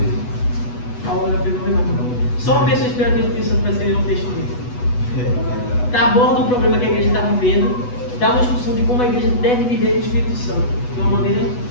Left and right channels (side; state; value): right; late; 8.1 ms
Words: Só uma pessoa espera ter o Espírito Santo para escrever um texto desse. Está aborda o problema que a igreja está vivendo, dá uma instrução de como a igreja deve viver com o Espírito Santo, de uma maneira